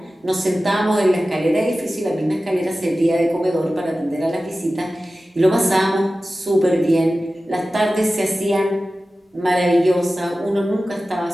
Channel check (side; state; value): both; normal; correlation 0.95